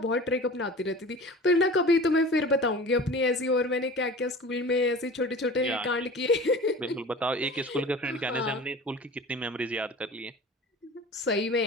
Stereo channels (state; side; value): normal; both; correlation 0.39